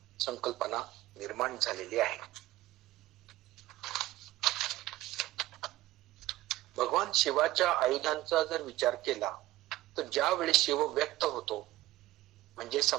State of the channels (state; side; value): quieter; left; 16.5 dB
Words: संकल्पना निर्माण झालेली आहे. भगवान शिवाच्या आयुधांचा जर विचार केला तर ज्यावेळी शिव व्यक्त होतो, म्हणजे